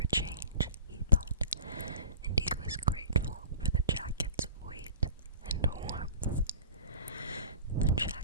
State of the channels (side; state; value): both; inverted; correlation -0.39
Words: change, he thought, and he was grateful for the jacket's weight and warmth. The